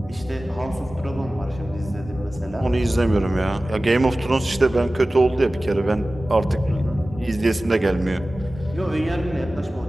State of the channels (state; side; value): normal; both; correlation 0.97